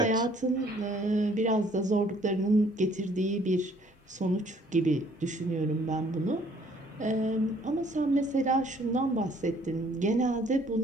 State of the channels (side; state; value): both; normal; correlation 0.60